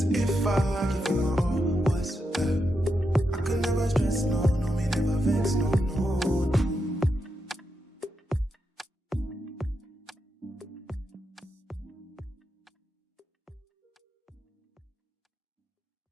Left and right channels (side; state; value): both; normal; correlation 0.85